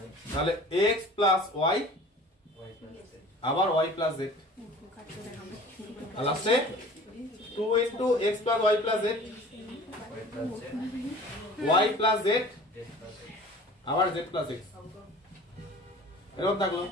তাহলে x প্লাস y আবার y প্লাস z। আর লাস্টে 2 into x plus y plus z y plus z আবার z প্লাস x এরকম থাকলো।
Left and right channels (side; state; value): both; normal; correlation 0.44